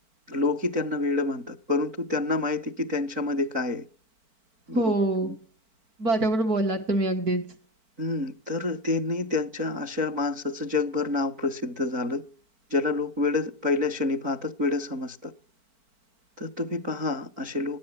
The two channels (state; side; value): late; left; 4.5 ms